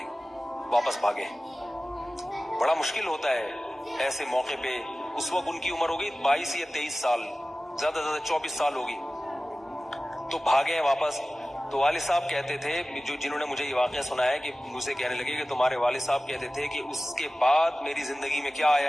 واپس بھاگے۔ بڑا مشکل ہوتا ہے ایسے موقع پہ۔ اس وقت ان کی عمر ہوگی 22 یا 23 سال، زیادہ سے زیادہ 24 سال ہوگی، تو بھاگے ہیں واپس۔ تو والد صاحب کہتے تھے، جنہوں نے مجھے یہ واقعہ سنایا، کہ مجھے کہنے لگے کہ تمہارے والد صاحب کہتے تھے کہ اس کے بعد میری زندگی میں کیا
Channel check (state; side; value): normal; both; correlation 0.97